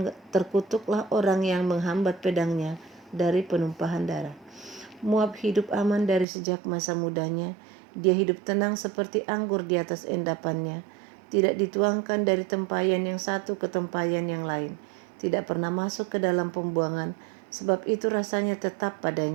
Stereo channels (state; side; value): drops out; left; at 6.2 s